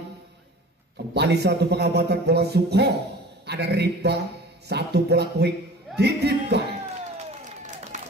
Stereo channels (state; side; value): normal; both; correlation 0.42